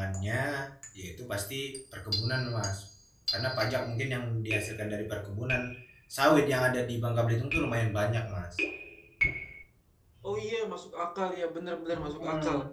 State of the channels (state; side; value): identical; both; correlation 1.00